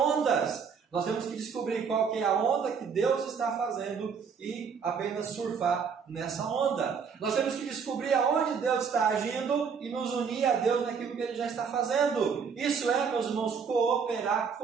Nós temos que descobrir qual que é a onda que Deus está fazendo e apenas surfar nessa onda. Nós temos que descobrir aonde Deus está agindo e nos unir a Deus naquilo que Ele já está fazendo. Isso é, meus irmãos, cooperar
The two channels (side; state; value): left; quieter; 6.2 dB